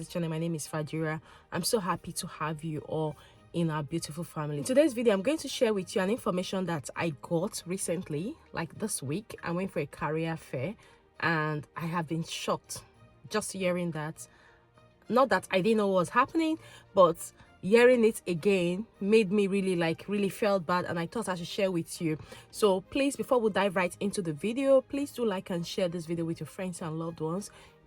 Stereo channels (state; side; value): identical; both; correlation 1.00